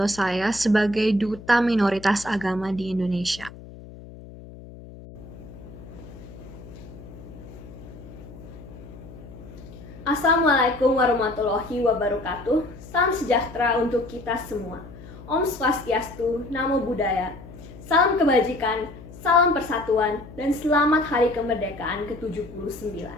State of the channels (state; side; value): noise; left; hum, 17 dB below the sound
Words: saya sebagai Duta Minoritas Agama di Indonesia. Assalamualaikum warahmatullahi wabarakatuh. Salam sejahtera untuk kita semua. Om Swastiastu, Namo Buddhaya. Salam kebajikan, salam persatuan, dan selamat Hari Kemerdekaan ke-79.